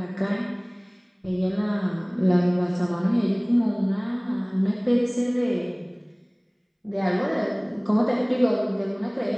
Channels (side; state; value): both; identical; correlation 1.00